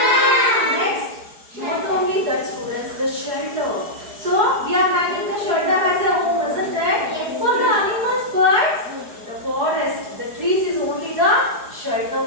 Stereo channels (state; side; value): late; left; 4.7 ms